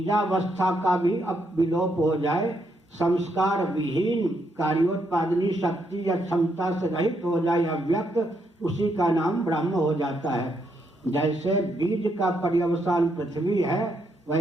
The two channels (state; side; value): normal; both; correlation 0.77